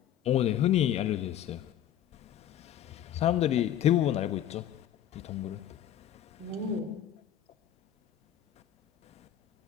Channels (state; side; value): quieter; right; 10.9 dB